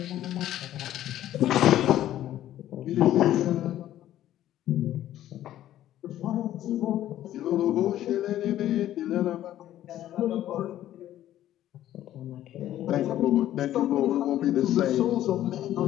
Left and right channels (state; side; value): quieter; right; 12.8 dB